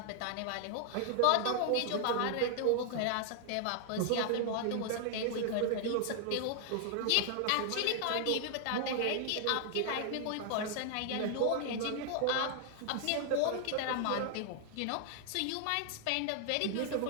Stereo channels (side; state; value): both; different; correlation 0.00